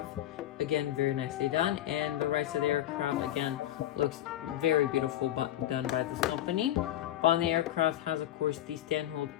again very nicely done, and the right side of the aircraft again looks very beautiful done by this company. On the aircraft has of course the stand hold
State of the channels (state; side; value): quieter; right; 12.9 dB